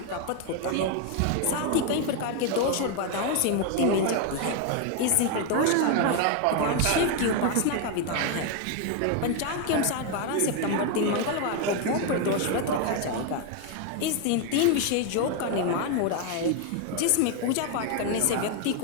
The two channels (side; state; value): both; different; correlation 0.01